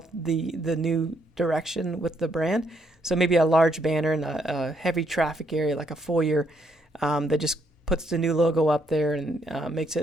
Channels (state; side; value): normal; both; correlation 0.73